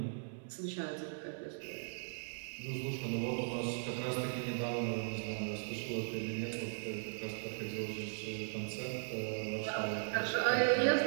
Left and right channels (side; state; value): left; silent; 52 dB below the other